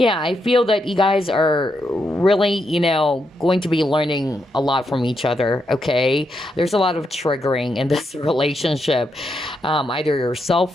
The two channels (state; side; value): normal; both; correlation 0.81